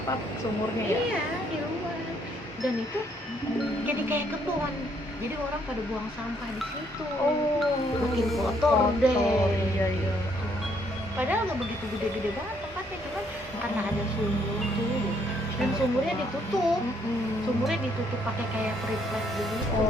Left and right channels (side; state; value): both; normal; correlation 0.69